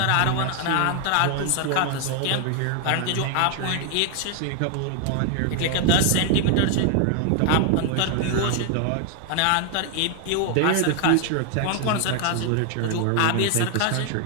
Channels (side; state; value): both; different; correlation 0.00